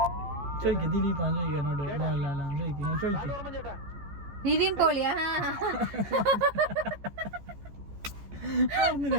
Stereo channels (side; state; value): left; late; 14 ms